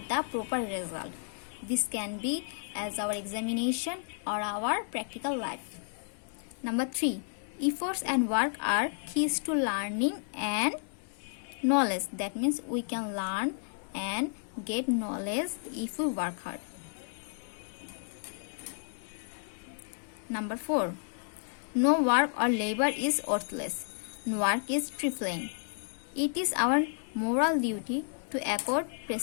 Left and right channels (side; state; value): right; silent; digital silence